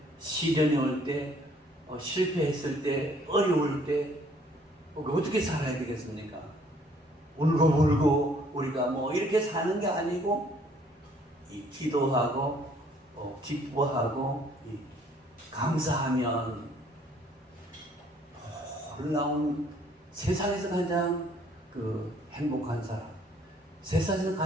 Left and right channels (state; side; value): normal; both; correlation 0.61